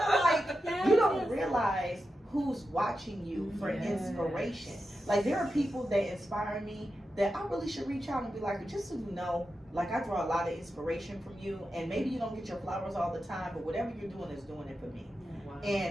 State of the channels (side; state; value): both; normal; correlation 0.90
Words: of like, you don't realize who's watching you for inspiration. Like, there are people that inspire me that I really should reach out and be like, just so you know, like, I draw a lot of inspiration from you, and maybe you don't get your flowers all the time, but whatever you're doing is doing it for me.